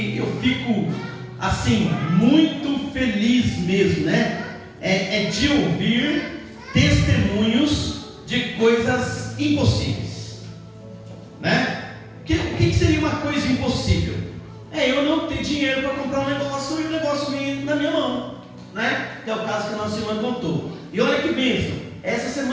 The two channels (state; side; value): identical; both; correlation 1.00